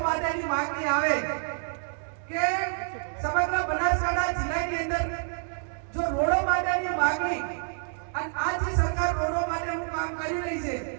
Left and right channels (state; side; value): silent; left; digital silence